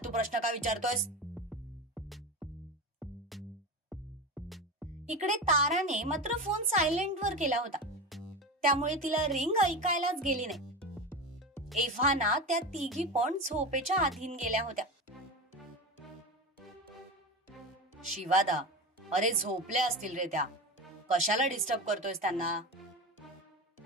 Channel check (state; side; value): normal; both; correlation 0.24